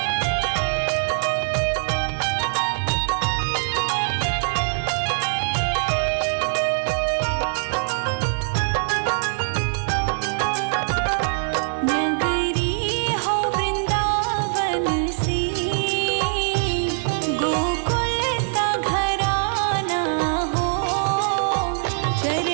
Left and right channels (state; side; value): silent; left; digital silence